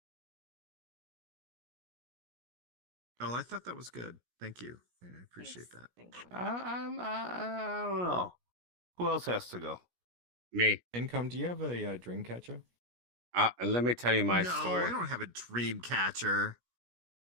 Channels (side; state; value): left; late; 17 ms